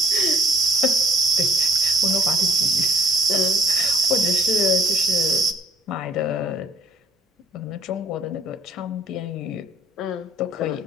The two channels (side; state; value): both; normal; correlation 0.59